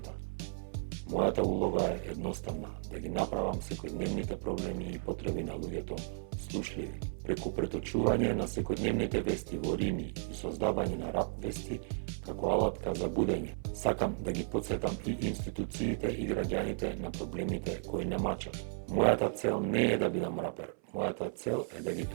Мојата улога е едноставна, да ги направам секојдневните проблеми и потреби на луѓето слушливи. Преку преточување на секојдневните вести во рими и создавање на рап вести како алатка за будење, сакам да ги потсетам и институциите и граѓаните на проблемите кои не мачат. Мојата цел не е да бидам рапер, мојата цел е да ги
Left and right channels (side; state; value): left; silent; 55 dB below the other